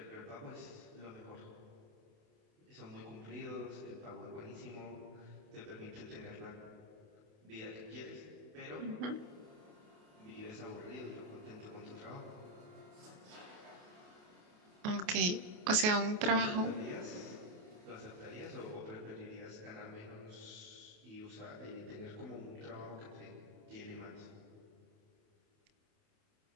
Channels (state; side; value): late; left; 28 ms